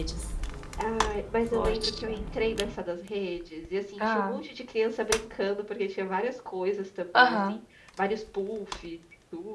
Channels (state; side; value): identical; both; correlation 1.00